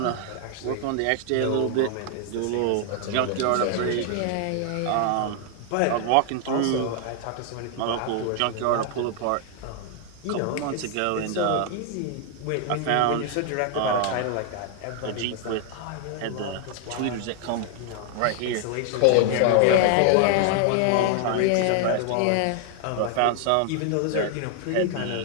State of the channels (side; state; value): both; different; correlation 0.00